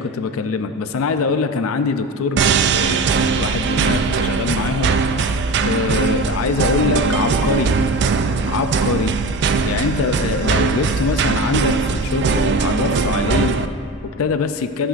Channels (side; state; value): both; normal; correlation 0.29